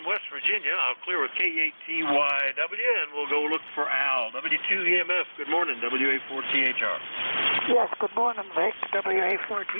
West Virginia. I'll clear with K8TYW, and we'll go look for Al. W2EMF, good morning. WA4THR. Yes, good morning, Vic.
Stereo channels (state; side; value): inverted; both; correlation -1.00